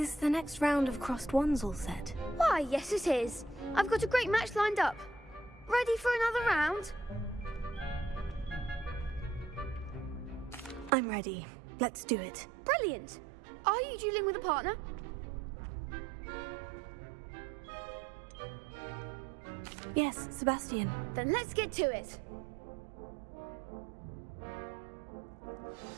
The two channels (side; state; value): left; drops out; at 10.9 s